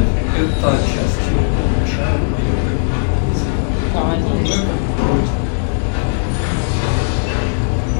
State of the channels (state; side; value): silent; right; digital silence